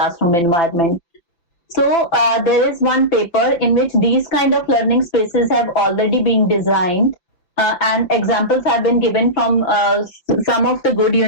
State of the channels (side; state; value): right; late; 5.9 ms